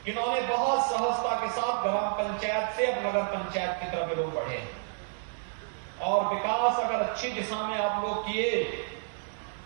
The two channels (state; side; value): silent; left; digital silence